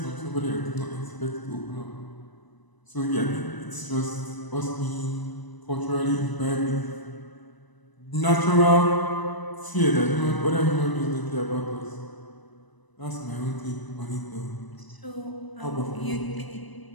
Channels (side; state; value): right; late; 1.0 ms